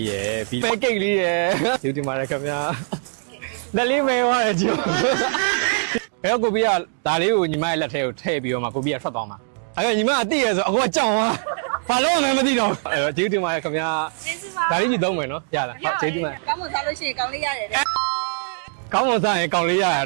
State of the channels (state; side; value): silent; left; digital silence